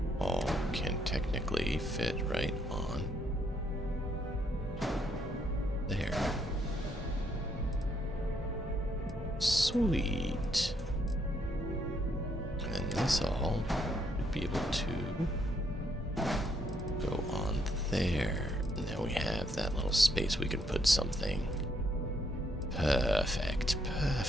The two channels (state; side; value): normal; both; correlation 0.73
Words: all can technically fit right on there. Sweet. And then this all would be able to go on there. And now we have that little space we can put something. Perfect,